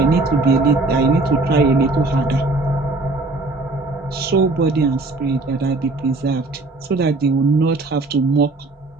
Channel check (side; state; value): left; quieter; 3.2 dB